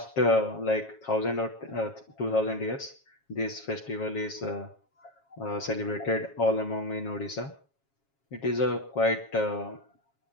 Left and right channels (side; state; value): right; late; 7.3 ms